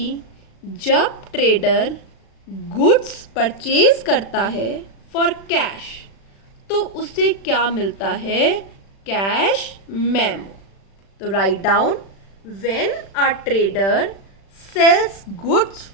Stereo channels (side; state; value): right; late; 36 ms